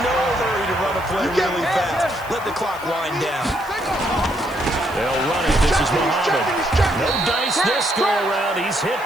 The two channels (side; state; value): right; noise; hiss, 21 dB below the sound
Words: no hurry to run a play really fast. Let the clock wind down. They'll run it. This is Muhammad. No dice this go-around. He's hit